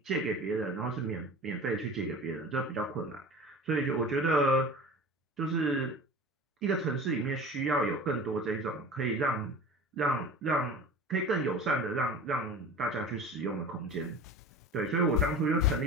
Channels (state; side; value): normal; both; correlation 0.37